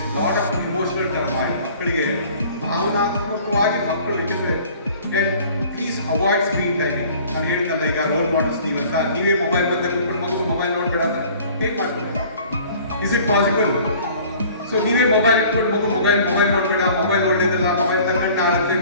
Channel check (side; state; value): both; inverted; correlation -0.50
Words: lot of emotional turmoil. ಮಕ್ಕಳಿಗೆ ಭಾವನಾತ್ಮಕವಾಗಿ ಮಕ್ಕಳು ಇಟ್ಟಿದ್ರೆ ಪ್ಲೀಸ್ ಅವಾಯ್ಡ್ ಸ್ಕ್ರೀನ್ ಟೈಮಿಂಗ್. ನಾನು ಹೇಳಿದ್ನಲ್ಲ, ಈಗ ರೋಲ್ ಮಾಡೆಲ್ಸ್ ನೀವಂತ ನೀವೇ ಮೊಬೈಲ್ ಬಂದ ಕುತ್ಕೊಂಡು ಮಗು ಮೊಬೈಲ್ ನೋಡಬೇಡ ಅಂತ ಹೇಗೆ ಮಾಡ್ತೀವಿ? Is it possible? ಸೊ ನೀವೇ ಮೊಬೈಲ್ ಇಟ್ಕೊಂಡು ಮಗು ಮೊಬೈಲ್ ನೋಡಬೇಡ, ಮೊಬೈಲ್ ಒಳ್ಳೇದಲ್ಲ, ಮೊಬೈಲ್ ತಗೊಂಡು ಆಗುತ್ತೆ,